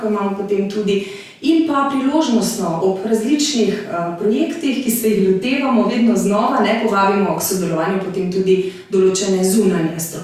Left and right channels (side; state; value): both; identical; correlation 1.00